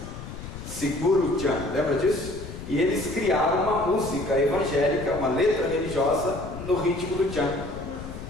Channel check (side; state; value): left; noise; rumble, 11 dB below the sound